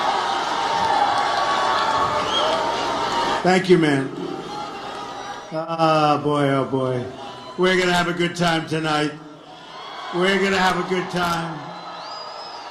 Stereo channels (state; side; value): identical; both; correlation 1.00